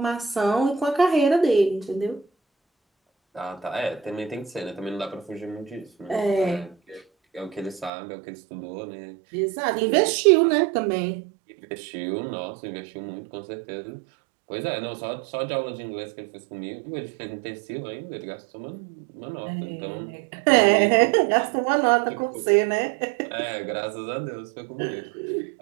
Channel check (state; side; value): drops out; left; at 7.9 s